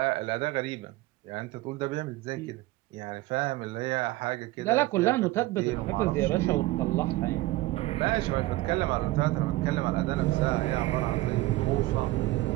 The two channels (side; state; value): left; quieter; 18.5 dB